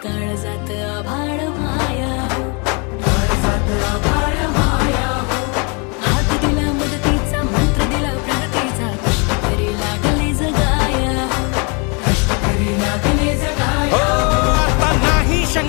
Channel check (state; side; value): quieter; right; 33.4 dB